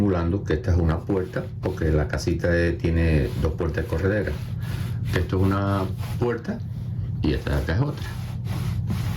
que esta es una puerta, porque la casita tiene dos puertas correderas. Esto es una puerta y esta de acá es otra.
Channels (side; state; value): both; identical; correlation 1.00